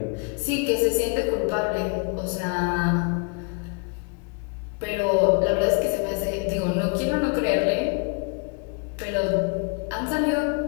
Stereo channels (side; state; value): right; quieter; 35.5 dB